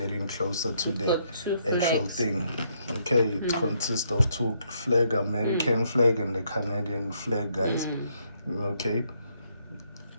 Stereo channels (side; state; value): both; inverted; correlation -0.73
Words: to the actual thing. Okay, it consists of 2 flags, American flag and the Canadian flag, guys. Okay,